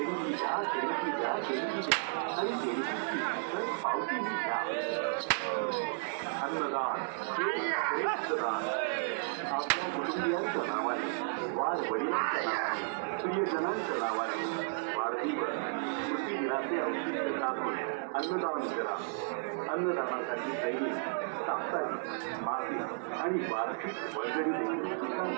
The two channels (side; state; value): left; silent; digital silence